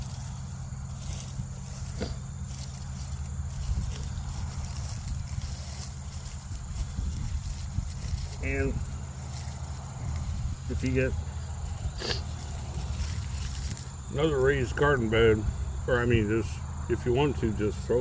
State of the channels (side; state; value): both; identical; correlation 1.00